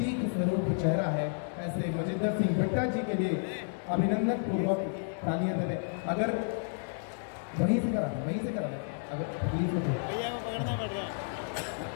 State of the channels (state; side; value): silent; right; digital silence